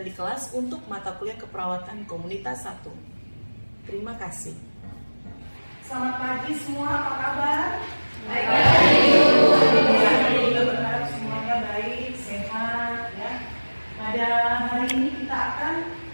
di kelas untuk mata kuliah keperawatan komunitas 1. Terima kasih. Selamat pagi semua, apa kabar? Baik. Kita berharap semuanya baik, sehat ya. Pada hari ini kita akan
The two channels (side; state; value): both; inverted; correlation -1.00